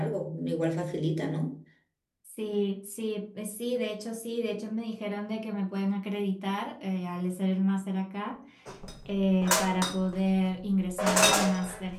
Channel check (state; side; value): identical; both; correlation 1.00